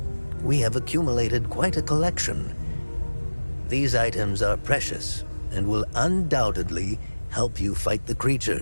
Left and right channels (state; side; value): inverted; both; correlation -1.00